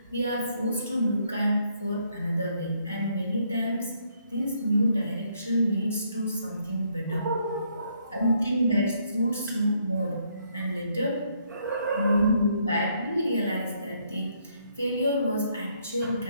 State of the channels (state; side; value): inverted; both; correlation -0.71